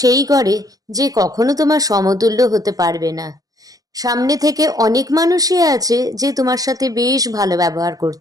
সেই করে যে কখনো তোমার সমতুল্য হতে পারবে না। সামনে থেকে অনেক মানুষই আছে যে তোমার সাথে বেশ ভালো ব্যবহার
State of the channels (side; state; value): left; late; 0.18 ms